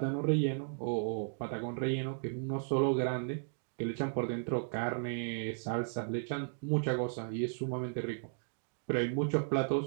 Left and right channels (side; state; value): left; silent; digital silence